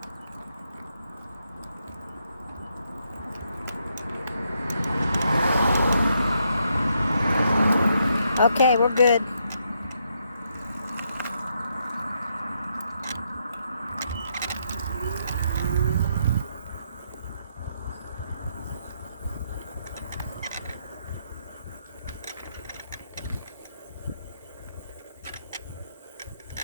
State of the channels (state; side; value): inverted; both; correlation -0.77